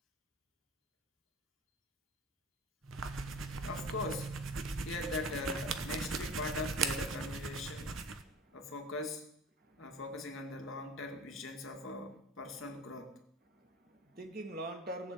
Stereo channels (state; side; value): normal; both; correlation 0.39